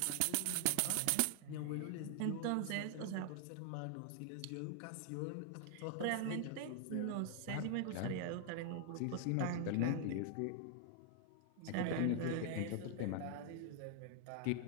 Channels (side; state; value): both; different; correlation 0.00